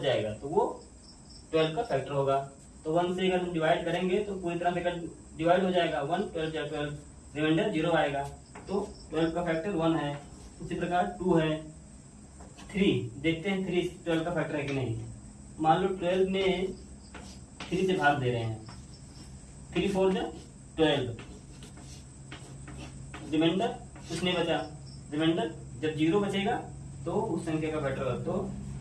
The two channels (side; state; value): both; identical; correlation 1.00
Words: जाएगा तो वो 12 का फैक्टर होगा। तो 1 से अगर हम डिवाइड करेंगे तो पूरी तरह से कट डिवाइड हो जाएगा, 1 12 या 12 रिमाइंडर 0 आएगा, तो 12 का फैक्टर 1 है। उसी प्रकार 2 है, 3 देखते हैं 3 12 का फैक्टर है कि नहीं। मान लो 12 में 3 से भाग दे रहे हैं, 3 4 जा 12, रिमाइंडर कुछ नहीं बचा। रिमाइंडर जब 0 बचेगा तो उस संख्या का फैक्टर होगा। तो